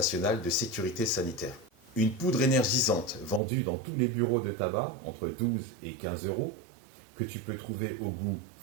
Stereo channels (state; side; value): drops out; left; at 3.4 s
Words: de sécurité sanitaire. Une poudre énergisante vendue dans tous les bureaux de tabac, entre 12 et 15 euros, que tu peux trouver au goût